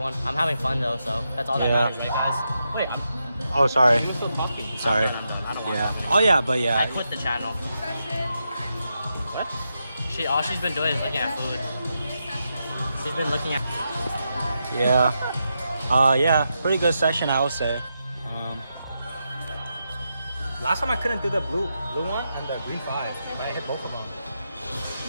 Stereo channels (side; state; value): both; inverted; correlation -0.85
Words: I'm having fun though, so that's all that Yeah. matters, right, guys? Wait, Oh, sorry. you're still talking. Sorry. I don't want Yeah. to. Oh yeah, but I yeah. quit the channel. What? All she's been doing is looking at food. She's been looking at. Yeah. Yeah. Pretty good session, I would say. Last time I couldn't do the blue one and the green 5, but I hit both of them.